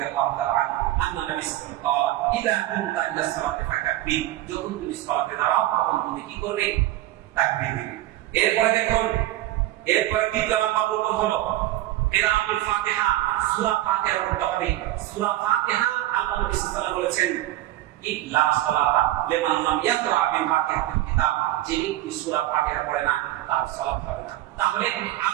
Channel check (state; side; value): quieter; left; 15.4 dB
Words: তাআলা আন্না নবী সাল্লাল্লাহু আলাইহি ওয়াসাল্লাম ইদা কুনতা ইলা সালাতি ফাকাব্বির, যখন তুমি সালাতে দাঁড়াও তখন তুমি কি করবে, তাকবীর দিবে। এরপরে দেখুন, এরপরে দ্বিতীয় নাম্বার রুকুন হলো কিরাআতুল ফাতিহা, সূরা ফাতিহা পড়তে হবে। সূরা ফাতিহা আল্লাহ নবী সাল্লাল্লাহু আলাইহি ওয়াসাল্লাম বলেছেন, ইল্লা সালাতা লিমান লাম ইয়াকরা বিফাতিহাতিল কিতাব, যে ব্যক্তি সূরা ফাতিহা পড়ে না তার সালাত হবে না। তাহলে